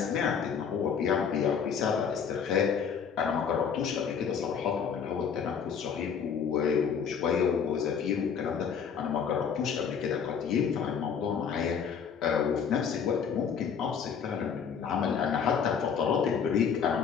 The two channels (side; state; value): right; quieter; 6.9 dB